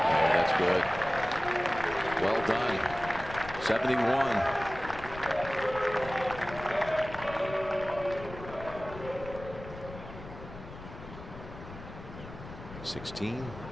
good. Well done. 71.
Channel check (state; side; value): noise; left; rumble, 13 dB below the sound